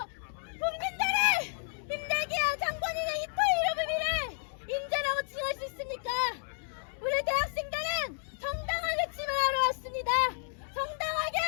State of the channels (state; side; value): silent; right; digital silence